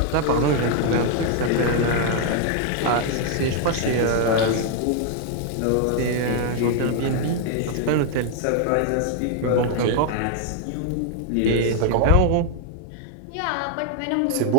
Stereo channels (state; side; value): different; both; correlation 0.00